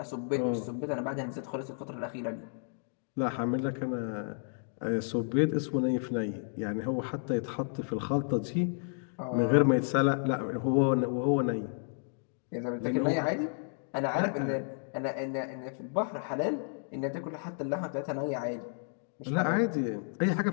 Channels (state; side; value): silent; right; digital silence